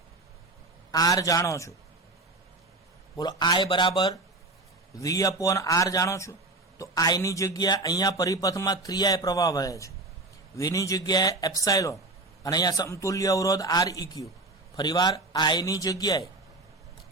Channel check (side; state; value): left; quieter; 3.1 dB